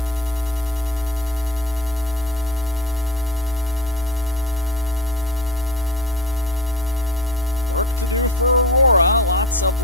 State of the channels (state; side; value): normal; both; correlation 0.34